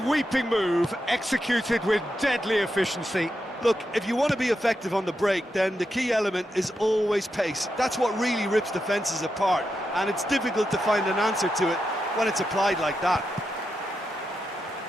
move, executed with deadly efficiency. Look, if you want to be effective on the break, then the key element is always pace. That's what really rips defences apart, and it's difficult to find an answer to it when it's applied like that.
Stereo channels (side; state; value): both; normal; correlation 0.86